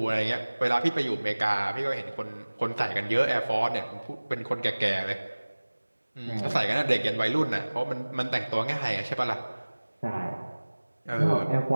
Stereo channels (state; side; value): inverted; both; correlation -1.00